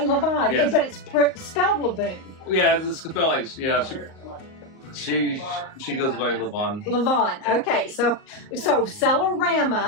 yes. But it's spelled Lavoon. Yeah, it's spelled like, She goes by Levon. Levon. Okay, so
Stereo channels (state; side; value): late; right; 38 ms